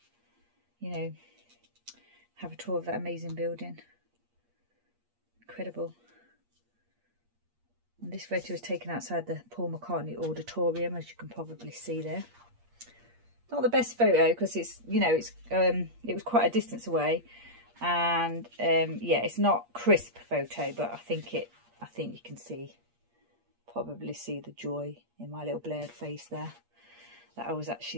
you know, have a tour of that amazing building. Incredible. And this photo was taken outside the Paul McCartney Auditorium, as you can probably see there. Not the best photo because it's, you know, it's it was quite a distance away, and yeah, it's not crisp photo, but I think you can probably see the joy in my little blurred face there, that I was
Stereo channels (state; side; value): late; left; 8.4 ms